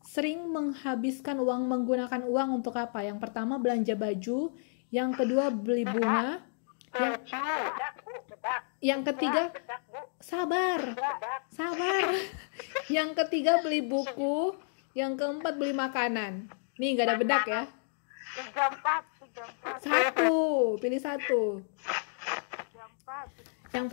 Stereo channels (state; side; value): silent; right; digital silence